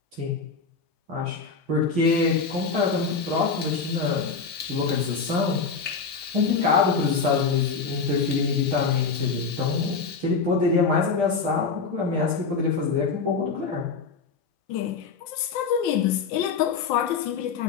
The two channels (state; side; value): quieter; right; 5.0 dB